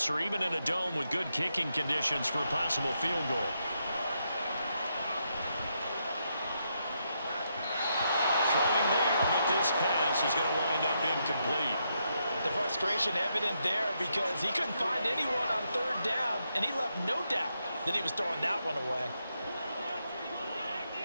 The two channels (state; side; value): inverted; both; correlation -0.80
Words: even in a dome with good kicking conditions for a possible field goal. Throwing there, but this pass is going to wind up frustration evident there because he couldn't find anyone on third down, and he left no doubt that he was throwing that one away.